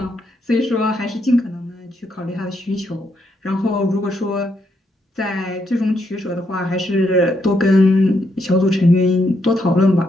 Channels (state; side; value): normal; both; correlation 0.77